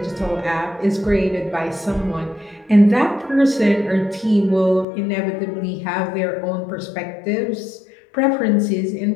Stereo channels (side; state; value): right; drops out; at 4.9 s